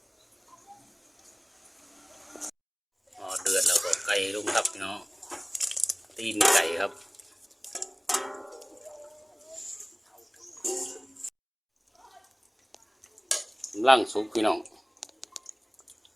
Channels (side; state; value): both; identical; correlation 1.00